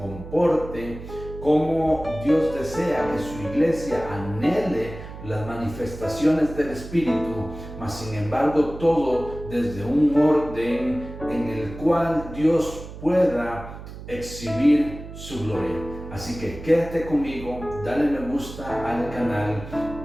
cómo Dios desea que su iglesia anhele las manifestaciones del Espíritu, mas sin embargo todo desde un orden en el cual Dios pueda exhibir su gloria. Así que quédate conmigo, dale me gusta al canal,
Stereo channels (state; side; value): noise; right; hum, 13 dB below the sound